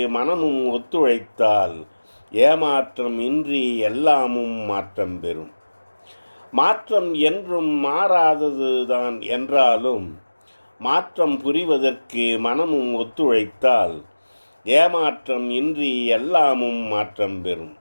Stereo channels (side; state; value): both; inverted; correlation -1.00